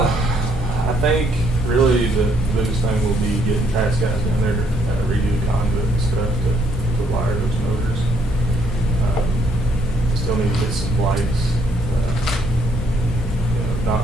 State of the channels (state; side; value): normal; both; correlation 0.69